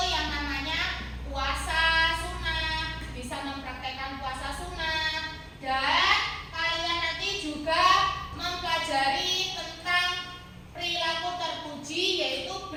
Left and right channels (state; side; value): identical; both; correlation 1.00